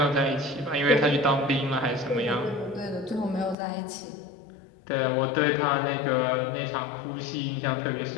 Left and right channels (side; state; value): right; drops out; at 3.6 s